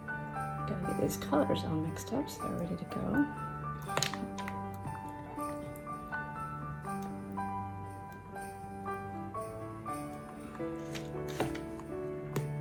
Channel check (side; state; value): both; identical; correlation 1.00